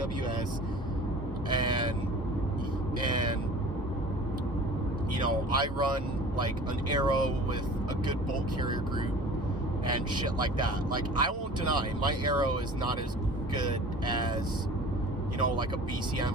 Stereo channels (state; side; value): normal; both; correlation 0.43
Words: and you know, I run like an Arrow with a good bolt carrier group and shit like that. Like, I won't deny my Arrow is not as good as, you know, like a